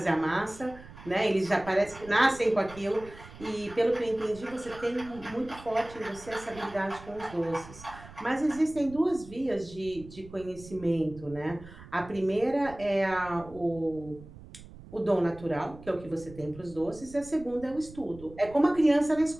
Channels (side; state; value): right; noise; rumble, 18 dB below the sound